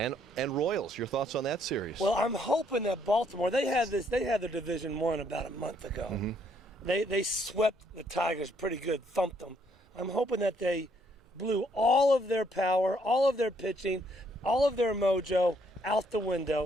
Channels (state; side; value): normal; both; correlation 0.69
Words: Royals. Your thoughts on that series? Well, I'm hoping that Baltimore, they had their Division I about a month ago. Mm-hmm. They swept the Tigers pretty good, thumped them. I'm hoping that they blew all of their power, all of their pitching, all of their mojo out the